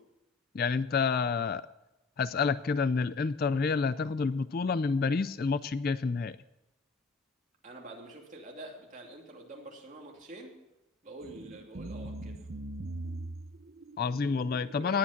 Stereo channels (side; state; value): right; quieter; 4.3 dB